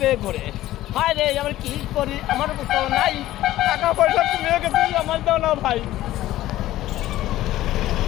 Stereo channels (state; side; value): quieter; right; 15.0 dB